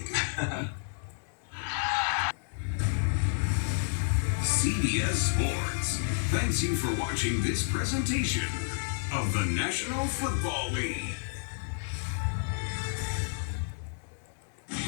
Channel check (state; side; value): silent; right; digital silence